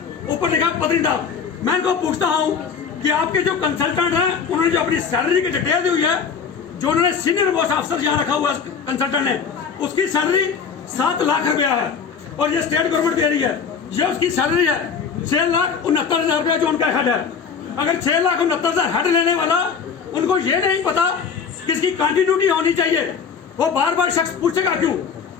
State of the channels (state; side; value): quieter; right; 6.1 dB